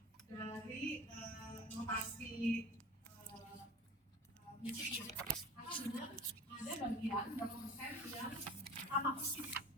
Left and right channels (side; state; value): both; normal; correlation 0.38